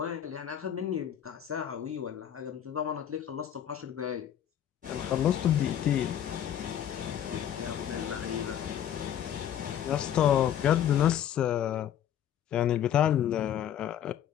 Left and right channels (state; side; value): quieter; right; 10.2 dB